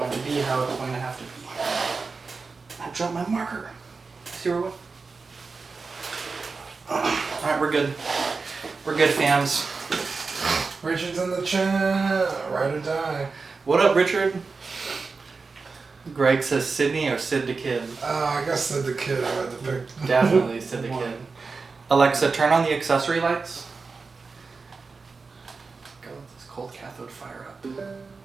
to be how it's going to have to be. I dropped my marker. See where it went? Alright, we're good. We're good, fams. Richard's in the chat. Ride or die. What up, Richard? Greg says Sydney or Sid the Kid. I guess the kid I had to pick. Definitely Sid the Kid. Alexa, turn on the accessory lights. Go let this cold cathode fire up.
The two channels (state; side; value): quieter; left; 4.4 dB